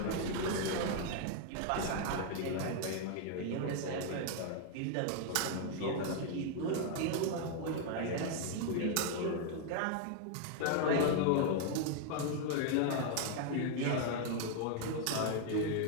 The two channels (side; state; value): both; different; correlation 0.00